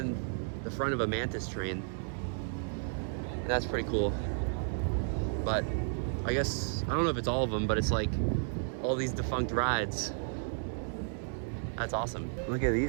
the front of a Mantis train. And that's pretty cool. But I guess, I don't know if it's all of them, but it's like all these defunct rides. That's awesome. Look at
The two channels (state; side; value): silent; left; 56 dB below the other